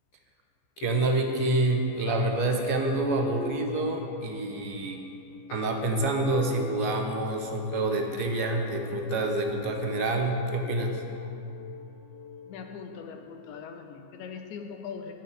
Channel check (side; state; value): right; late; 15 ms